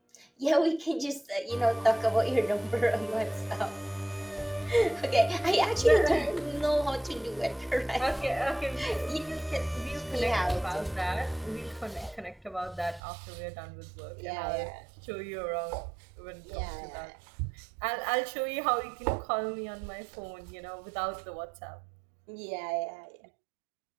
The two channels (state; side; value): drops out; left; at 13.0 s